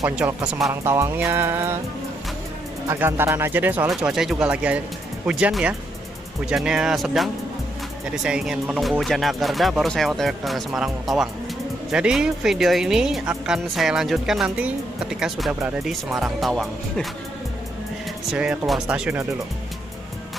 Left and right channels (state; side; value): normal; both; correlation 0.77